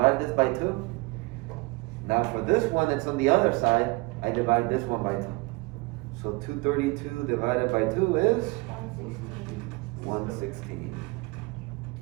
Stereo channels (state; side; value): quieter; left; 25.4 dB